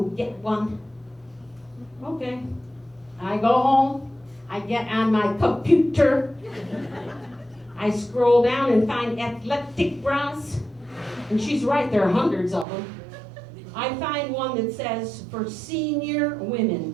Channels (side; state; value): left; drops out; at 12.7 s